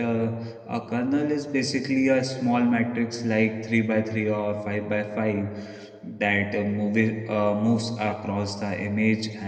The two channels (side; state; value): both; identical; correlation 1.00